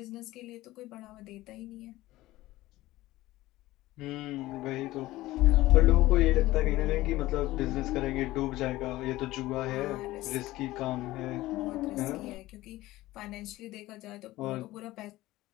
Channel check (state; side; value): quieter; right; 17.4 dB